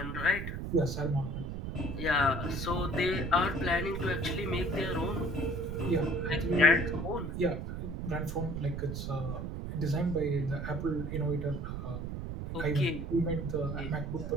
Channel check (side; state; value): right; noise; rumble, 5 dB below the sound